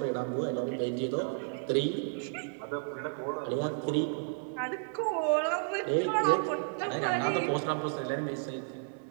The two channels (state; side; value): silent; left; digital silence